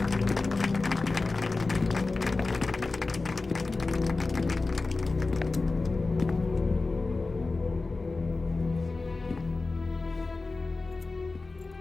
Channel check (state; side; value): quieter; right; 3.6 dB